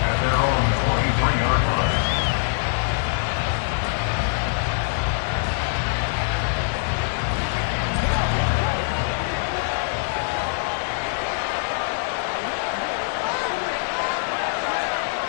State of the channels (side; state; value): right; silent; digital silence